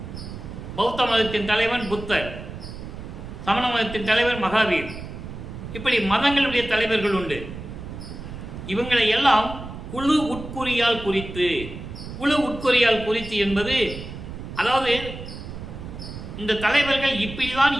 பௌத்த மதத்தின் தலைவன் புத்தர், சமண மதத்தின் தலைவர் மகாவீர், இப்படி மதங்களுடைய தலைவர்கள் உண்டு. இவங்களை எல்லாம் குழு உட்குறியால் குறித்து என்பது, அதாவது இந்த தலைவர்கள் இப்படிதான்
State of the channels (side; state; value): right; noise; rumble, 10 dB below the sound